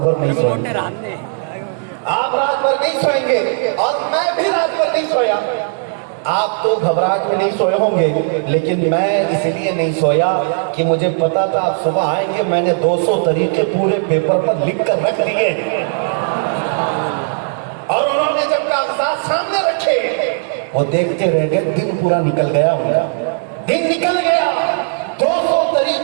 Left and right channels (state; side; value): silent; left; 65 dB below the other